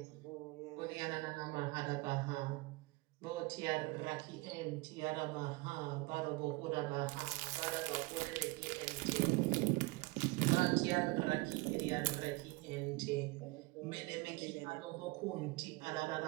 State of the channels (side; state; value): left; quieter; 23.7 dB